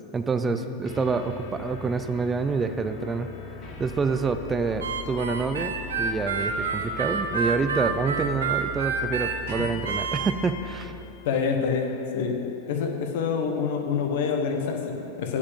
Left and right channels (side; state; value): both; normal; correlation 0.32